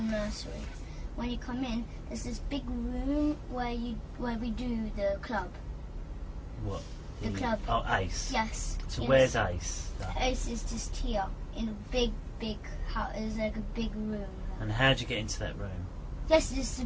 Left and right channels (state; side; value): identical; both; correlation 1.00